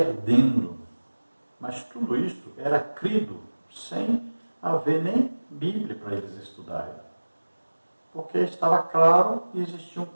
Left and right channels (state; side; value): inverted; both; correlation -1.00